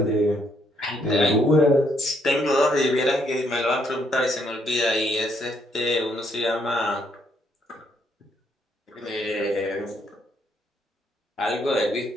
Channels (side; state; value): both; normal; correlation 0.71